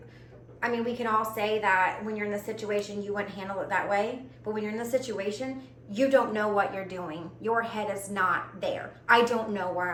I mean, we can all say that when you're in the situation, you wouldn't handle it that way. But when you're in the situation, you don't know what you're doing. Your head is not there. I don't know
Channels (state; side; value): identical; both; correlation 1.00